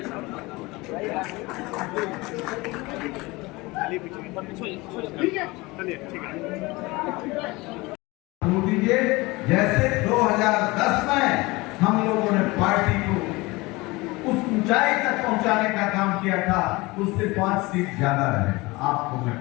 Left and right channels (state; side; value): quieter; right; 22.7 dB